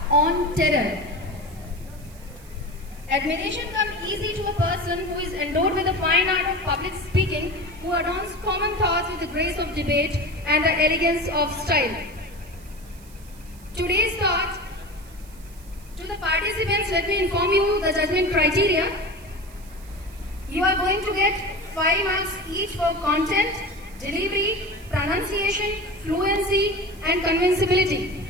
on terror." Admiration comes easy to a person who is endowed with the fine art of public speaking, who adorns common thoughts with the grace of debate and the elegance of style. Today's thought, to the participants, let me inform you the judgment criteria. You are going to get 5 marks each for content, delivery, pronunciation, fluency and convincibility.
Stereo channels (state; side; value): noise; right; hiss, 24 dB below the sound